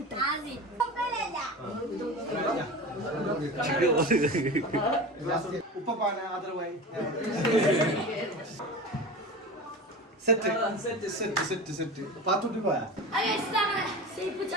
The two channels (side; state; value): both; normal; correlation 0.30